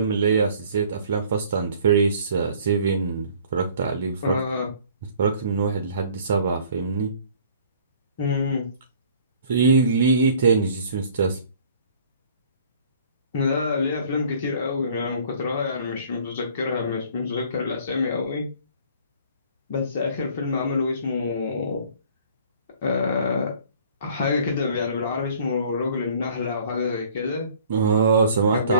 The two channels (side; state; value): both; inverted; correlation -0.54